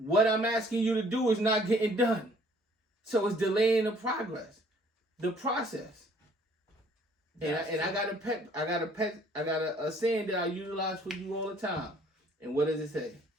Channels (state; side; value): normal; both; correlation 0.59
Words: I'm asking you to do is not getting done. So it's delaying the process. And I got a saying that I utilize for you all the time. And what does it say?